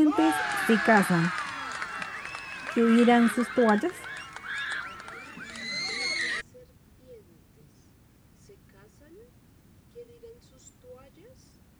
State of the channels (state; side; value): identical; both; correlation 1.00